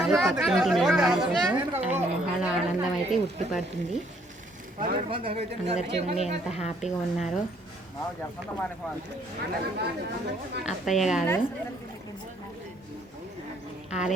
పక్కింటి నిర్మాణం కోసం ఆయన మొహాల ఆనందం అయితే ఉట్టిపడుతుంది. అందరు చూడండి ఎంత హ్యాపీగా ఉన్నారో. అత్తయ్య గారు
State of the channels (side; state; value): both; normal; correlation 0.65